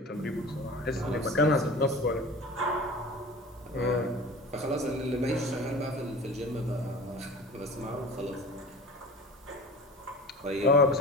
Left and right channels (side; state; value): both; normal; correlation 0.37